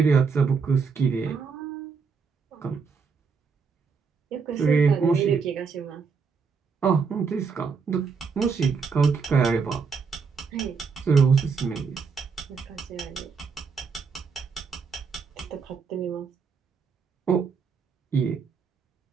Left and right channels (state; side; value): quieter; left; 5.4 dB